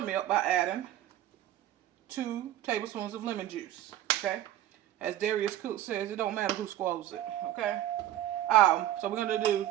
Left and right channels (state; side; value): quieter; left; 13.2 dB